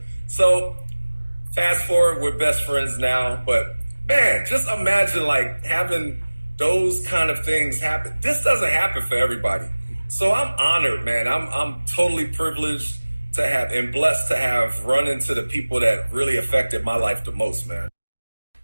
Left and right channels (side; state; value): both; inverted; correlation -1.00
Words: So fast forward, we're best friends now. But man, just imagine like having those kind of things happen. This doesn't happen for everybody. So I'm honored, man. I'm totally privileged to have and blessed to have run into the people that really affected my life the most, man.